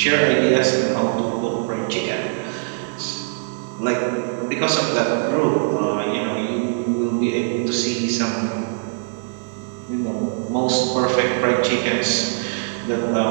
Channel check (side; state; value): left; silent; digital silence